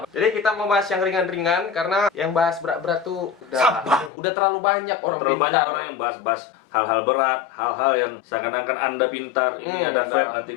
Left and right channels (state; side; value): drops out; right; at 4.1 s